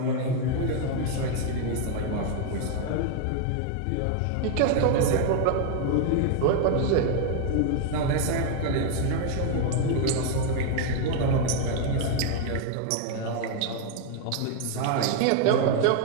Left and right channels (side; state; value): both; different; correlation 0.00